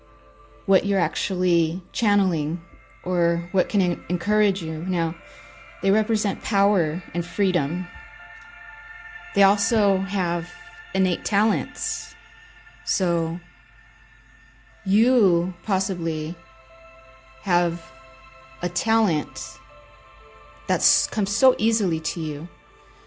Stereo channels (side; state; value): both; identical; correlation 1.00